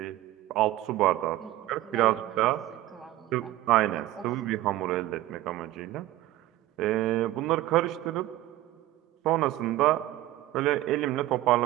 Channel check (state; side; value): quieter; left; 15.7 dB